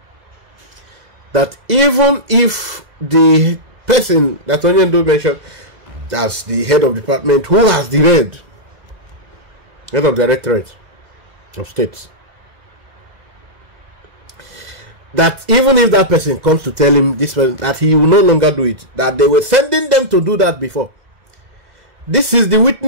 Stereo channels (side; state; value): left; late; 2.0 ms